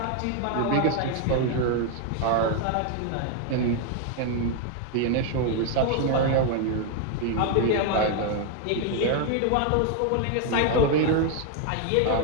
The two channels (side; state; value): both; different; correlation 0.01